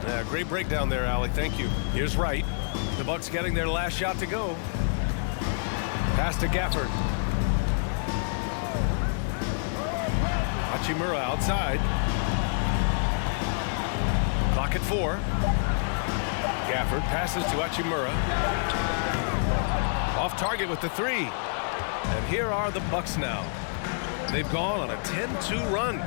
Yeah, great breakdown there, Allie. Thank you. Here's Wright. The Bucks getting their last shot to go. Pass to Gafford. Hachimura outside. Clock at 4. Gafford passes to Hachimura. Off target with the 3. And here are the Bucks now. They've gone on a 10-2 run,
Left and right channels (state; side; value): silent; right; 58 dB below the other